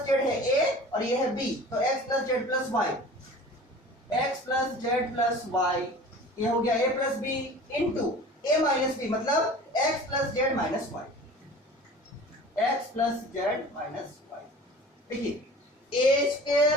जेड है a और ये है b, तो x plus Z plus y, x plus Z plus y, ये हो गया a plus B into a minus B, मतलब x plus Z minus y, x plus Z minus y। देखिए a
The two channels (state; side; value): normal; both; correlation 0.42